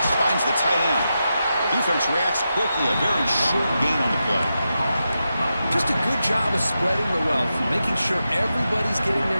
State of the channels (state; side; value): inverted; both; correlation -0.89